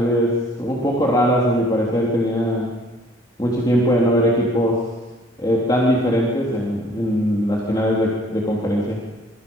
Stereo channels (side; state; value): both; normal; correlation 0.56